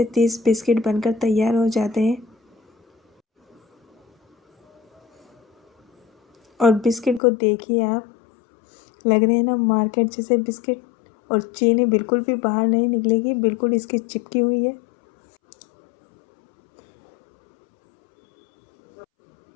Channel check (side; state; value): right; drops out; at 7.2 s